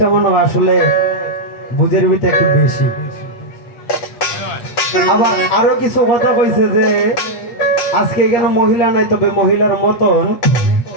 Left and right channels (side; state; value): right; late; 8.3 ms